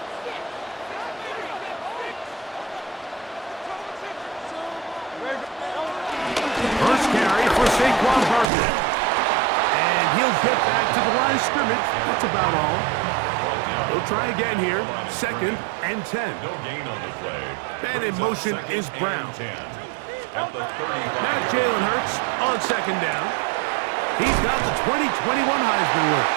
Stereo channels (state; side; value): drops out; left; at 8.5 s